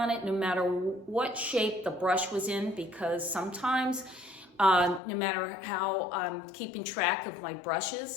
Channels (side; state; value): right; drops out; at 5.0 s